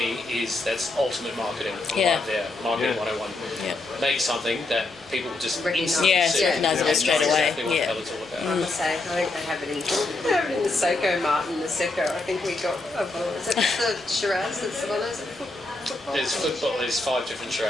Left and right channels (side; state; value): right; quieter; 3.1 dB